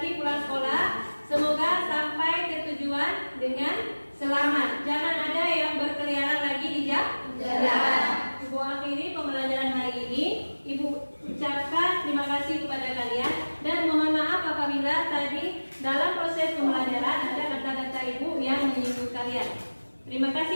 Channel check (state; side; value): inverted; both; correlation -1.00